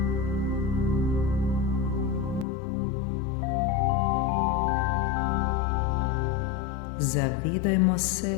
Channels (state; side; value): drops out; right; at 2.5 s